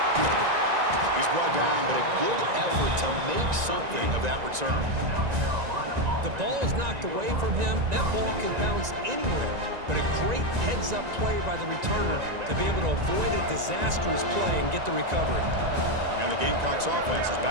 He's brought down, but a good effort to make something of that return. The ball is knocked away from him. That ball can bounce anywhere. But a great heads-up play by the returner to be able to avoid a disastrous play and get the recovery. And the Gamecocks offense is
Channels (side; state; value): left; late; 1.9 ms